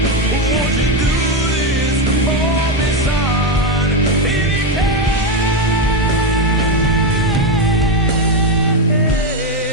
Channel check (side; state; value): both; normal; correlation 0.08